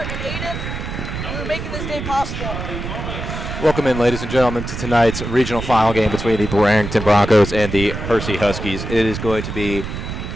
Aiden, who are making this day possible. welcome in, ladies and gentlemen, to tonight's regional final game between the Barrington Broncos and the Hersey Huskies. It is going to be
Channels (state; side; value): noise; right; rumble, 6 dB below the sound